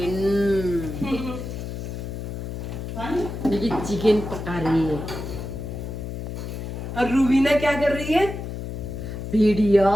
निक्की चिकन पका रही है। और रूबीना क्या कर रही है? वीडियो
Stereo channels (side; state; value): left; noise; hum, 6 dB below the sound